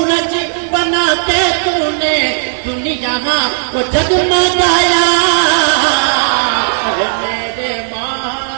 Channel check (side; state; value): left; silent; digital silence